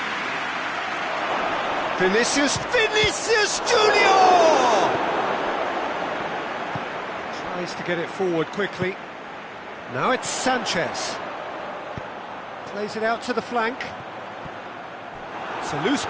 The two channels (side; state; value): both; identical; correlation 1.00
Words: Vinicius Junior! Tries to get it forward quickly. Now it's Sanchez. Plays it out to the flank. It's a loose